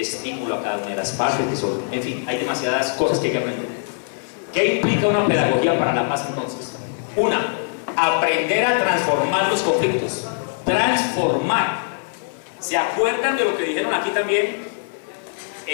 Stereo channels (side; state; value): right; silent; 64 dB below the other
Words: a cada una de las partes, en fin, hay demasiadas cosas que hay que aprender. ¿Qué implica una pedagogía para la paz entonces? Una, aprender a transformar los conflictos. Transformar. ¿Se acuerdan de lo que dijeron aquí también?